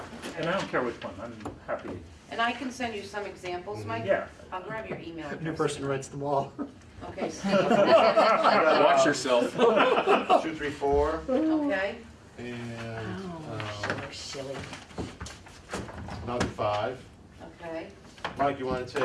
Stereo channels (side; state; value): both; identical; correlation 1.00